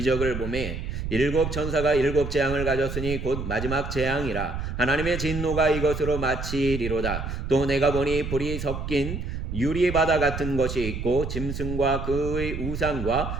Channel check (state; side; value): noise; right; rumble, 5 dB below the sound